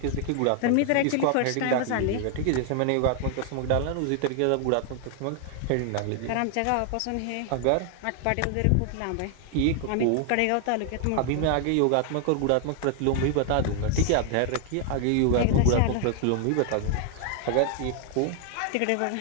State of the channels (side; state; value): both; different; correlation 0.00